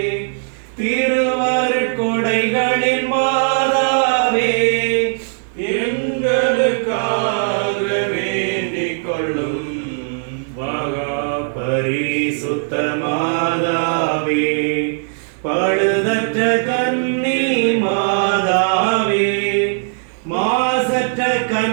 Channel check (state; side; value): silent; left; digital silence